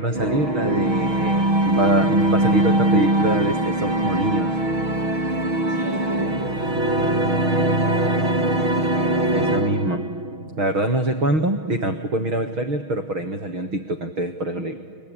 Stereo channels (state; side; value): late; left; 6.3 ms